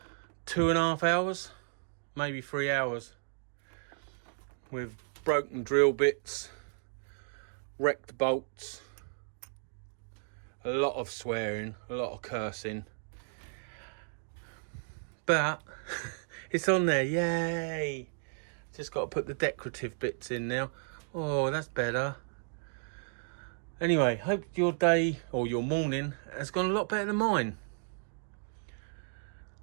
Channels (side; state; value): left; silent; digital silence